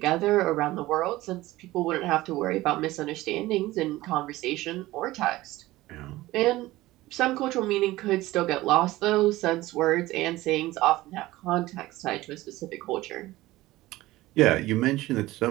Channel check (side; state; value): left; quieter; 17.8 dB